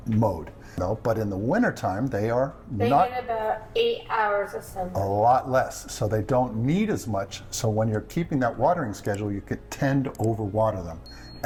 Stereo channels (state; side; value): identical; both; correlation 1.00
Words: mode. No, but in the wintertime, they get about 8 hours of sunlight. A lot less, so they don't need as much. So when you're keeping that watering schedule, you could tend to overwater them,